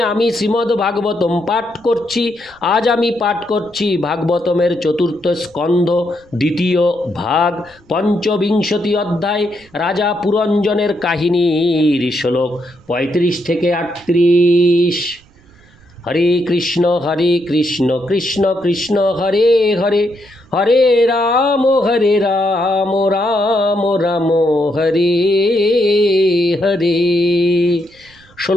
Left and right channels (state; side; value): noise; right; rumble, 28 dB below the sound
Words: আমি শ্রীমদ্ ভাগবতম পাঠ করছি। আজ আমি পাঠ করছি ভাগবতমের চতুর্থ স্কন্ধ, দ্বিতীয় ভাগ, পঞ্চবিংশতি অধ্যায়, রাজা পুরঞ্জনের কাহিনীর শ্লোক 35 থেকে 38। হরে কৃষ্ণ কৃষ্ণ কৃষ্ণ হরে হরে, হরে রাম রাম রাম হরে হরে।